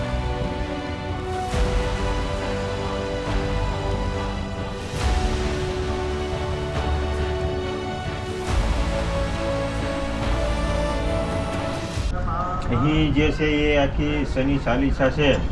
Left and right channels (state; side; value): identical; both; correlation 1.00